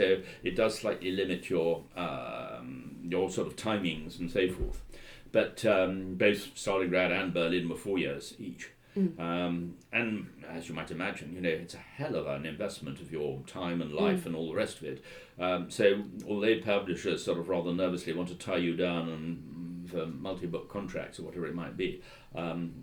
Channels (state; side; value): identical; both; correlation 1.00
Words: it does slightly limit your sort of timings and so forth. But both Stalingrad and Berlin were 4 years each. And as you might imagine, it's a hell of an investment of your time and life and all the rest of it. So although publishers sort of rather nervously want to tie you down and for multi-book contracts or whatever it might be.